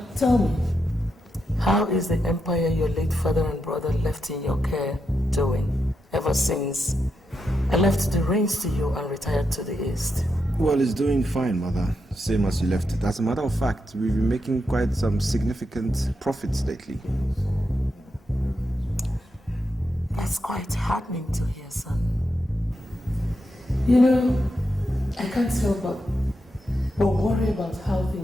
tell me, how is the empire your late father and brother left in your care doing ever since I left the reins to you and retired to the east? Well, it's doing fine, mother. Same as you left it. As a matter of fact, we've been making quite some significant profits lately. That's quite heartening to hear, son. You know, I can't help but worry about how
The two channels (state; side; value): normal; both; correlation 0.85